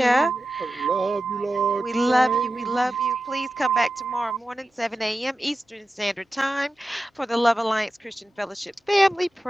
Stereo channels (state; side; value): normal; both; correlation 0.93